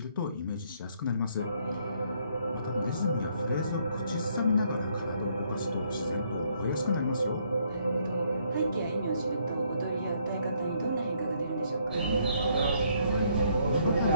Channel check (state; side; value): inverted; both; correlation -0.69